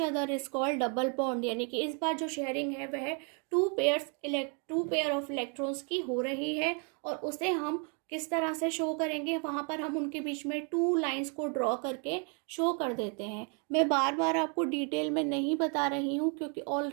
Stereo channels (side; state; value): left; quieter; 37.8 dB